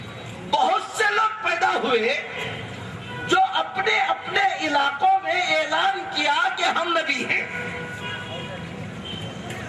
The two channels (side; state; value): both; identical; correlation 1.00